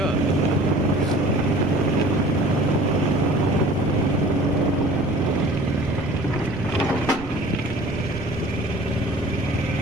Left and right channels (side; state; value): right; noise; rumble, 13 dB below the sound